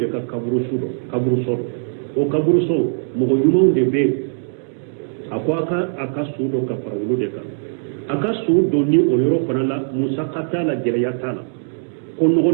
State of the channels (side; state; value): left; silent; digital silence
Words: ka kaburuso dɔ o kaburuso mɔgɔ ɲumanw de bɛ yen a ko a ka su dɔ ka fara olu de kan. A ka su dɔ ni o yɔrɔ fana la musaka t'a la gɛlɛya t'a la ko